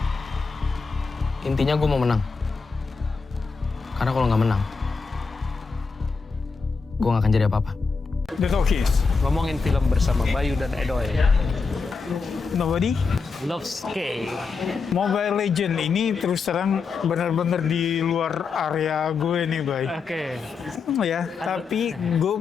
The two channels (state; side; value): quieter; right; 4.8 dB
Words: Intinya gue mau menang. Karena kalau nggak menang, gue nggak akan jadi apa-apa. The Talkies. Ngomongin film bersama Bayu dan Edoy. Nobody. Loves K. Mobile Legend ini terus terang benar-benar di luar area gue nih, Bay. Oke. Ya, tapi gue